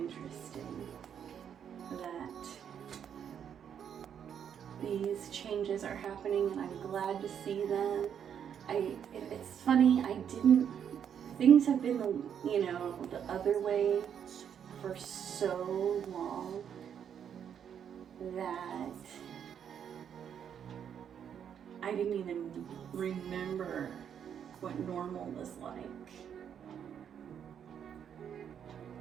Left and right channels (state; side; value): quieter; left; 8.4 dB